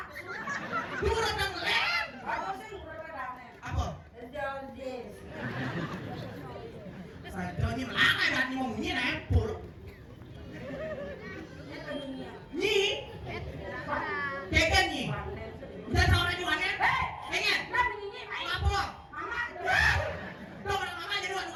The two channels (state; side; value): identical; both; correlation 1.00